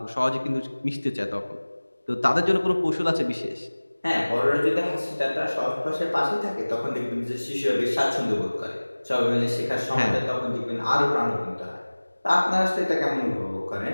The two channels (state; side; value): inverted; both; correlation -1.00